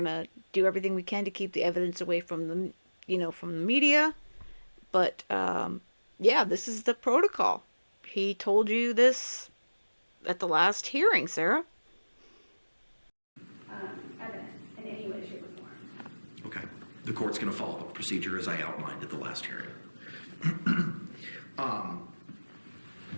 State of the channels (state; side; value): inverted; both; correlation -1.00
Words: to do everything we can to keep the evidence away from the, from the media. But, yeah, this is the protocol. He told you this at the last hearing, Sarah. Evidence in any way, shape, or form. Okay. The court's going to follow the procedure as I outlined at the last hearing.